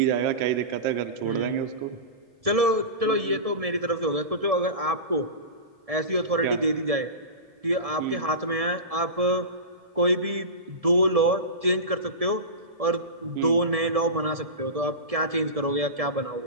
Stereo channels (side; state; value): left; late; 1.7 ms